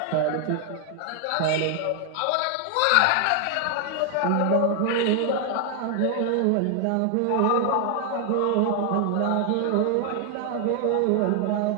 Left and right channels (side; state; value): both; different; correlation 0.00